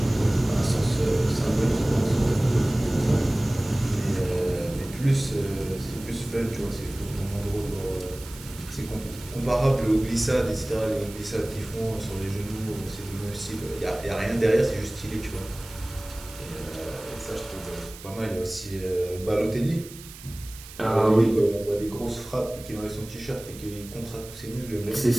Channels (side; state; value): right; noise; hiss, 17 dB below the sound